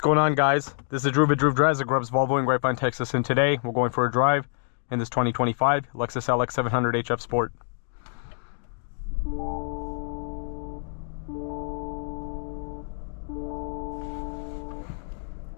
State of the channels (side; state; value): right; silent; digital silence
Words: going on, guys? This is Drew Drives at Grubbs Volvo in Grapevine, Texas, and today we're going for a drive in this 2025 Lexus LX 700 HF Sport.